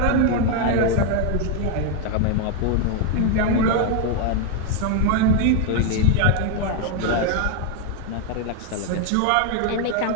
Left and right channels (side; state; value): both; different; correlation 0.01